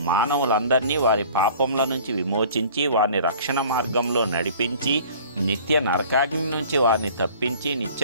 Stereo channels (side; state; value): both; inverted; correlation -0.48